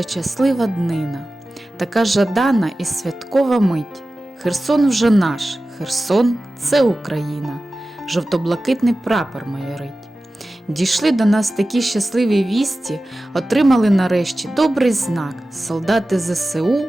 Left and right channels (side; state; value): both; normal; correlation 0.95